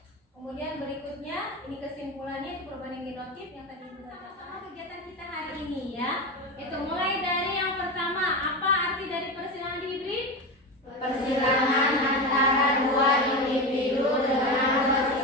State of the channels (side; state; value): both; normal; correlation 0.21